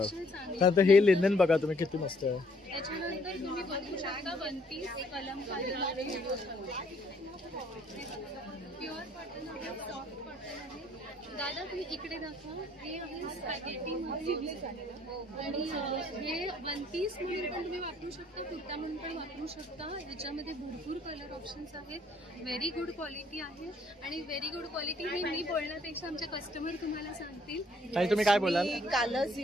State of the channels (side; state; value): both; normal; correlation 0.65